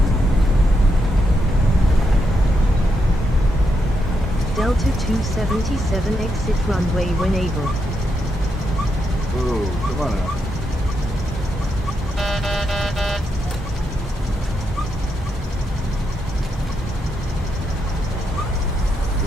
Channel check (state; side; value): normal; both; correlation 0.82